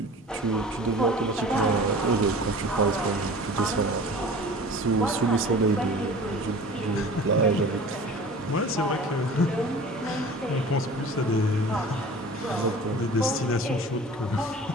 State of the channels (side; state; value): both; normal; correlation 0.41